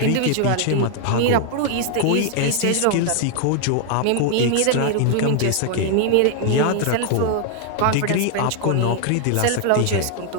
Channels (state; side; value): different; both; correlation 0.00